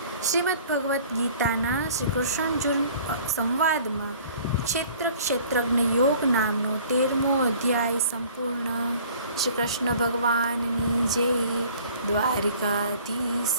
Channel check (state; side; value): inverted; both; correlation -0.51